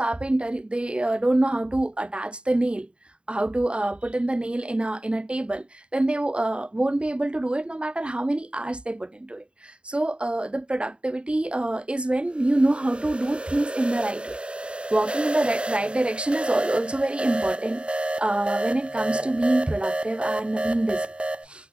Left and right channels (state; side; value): late; left; 0.054 ms